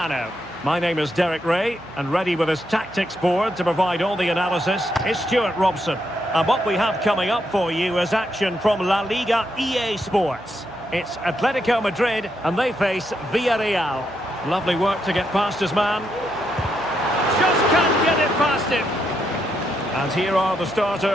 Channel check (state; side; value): noise; right; hum, 24 dB below the sound